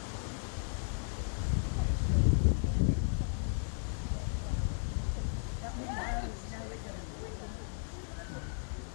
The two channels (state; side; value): silent; right; digital silence